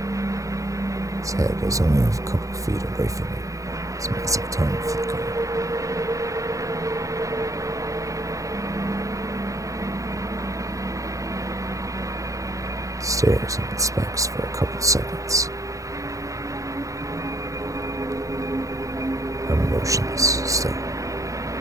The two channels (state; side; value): late; left; 0.16 ms